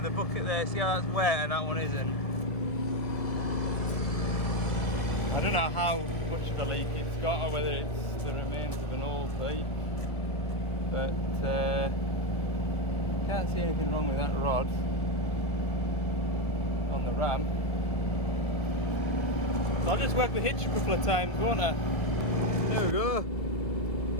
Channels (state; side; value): late; right; 1.7 ms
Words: the bucket there. See how that's wet and that one isn't. I don't know how much of a leak it's got or whether it's the remains of an old pipe, but can't see anything wrong with that rod on the ram. So I'll just work the hitch a couple of times, won't I? There we go.